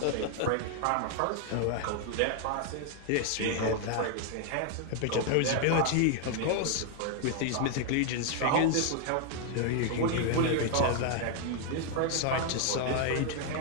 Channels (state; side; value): different; both; correlation 0.00